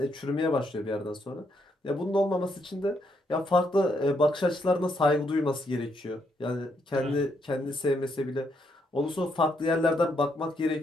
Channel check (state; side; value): normal; both; correlation 0.76